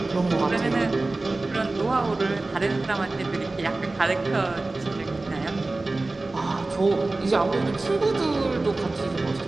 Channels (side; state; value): left; quieter; 3.1 dB